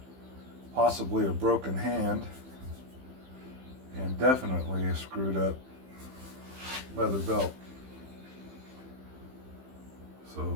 possibly a broken hand, and definitely a screwed up leather belt.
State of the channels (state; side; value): late; left; 15 ms